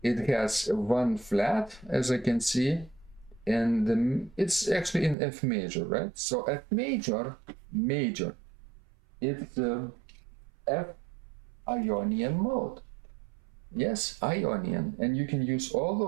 It has one flat, as I can see, and it's actually in F major, right? So F major, it's F Ionian mode. Yes, Ionian, and you can use all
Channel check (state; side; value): drops out; left; at 5.2 s